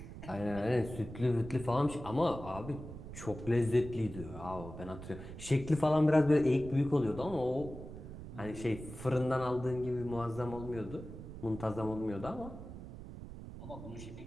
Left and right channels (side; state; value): right; noise; rumble, 12 dB below the sound